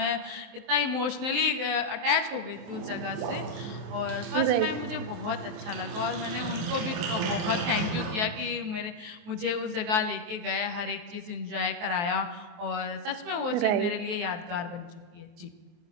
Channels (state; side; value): late; left; 23 ms